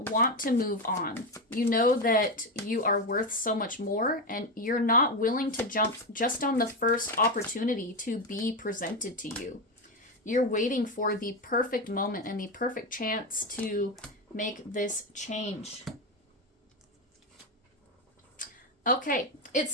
want to move on. You know that you are worth so much more, and you're not willing to jump just on the first opportunity to be presented to you. You're waiting for the perfect moment and the perfect chance to make this change. Okay, it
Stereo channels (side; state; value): both; normal; correlation 0.13